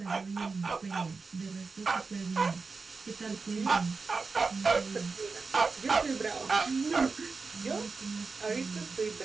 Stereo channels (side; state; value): left; quieter; 4.4 dB